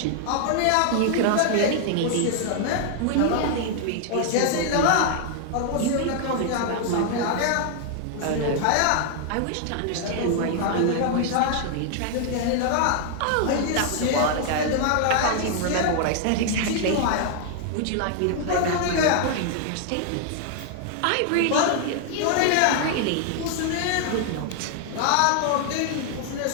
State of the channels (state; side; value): different; both; correlation 0.00